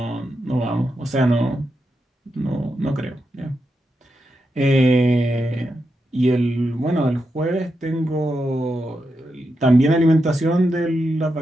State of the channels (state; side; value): normal; both; correlation 0.86